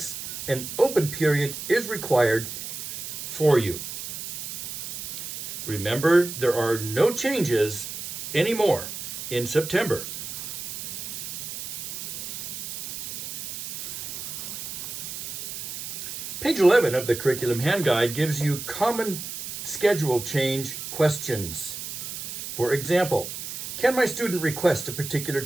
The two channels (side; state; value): right; noise; hiss, 7 dB below the sound